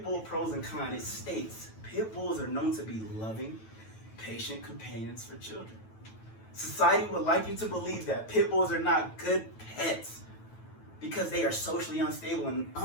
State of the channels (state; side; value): late; right; 9.1 ms